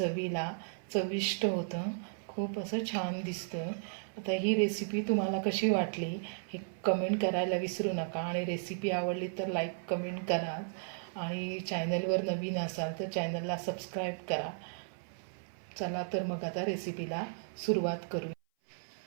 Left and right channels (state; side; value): silent; left; 55 dB below the other